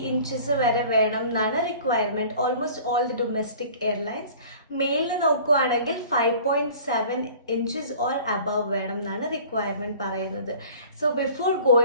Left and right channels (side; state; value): both; inverted; correlation -0.46